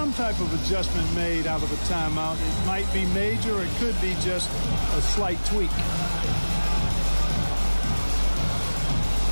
type of adjustment made out of a timeout. It might be major or it could be just a slight tweak.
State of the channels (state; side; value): inverted; both; correlation -1.00